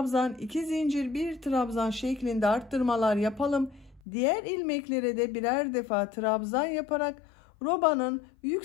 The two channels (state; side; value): drops out; right; at 4.0 s